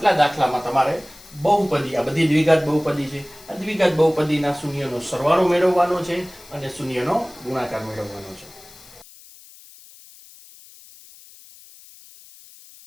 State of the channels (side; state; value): left; noise; hiss, 22 dB below the sound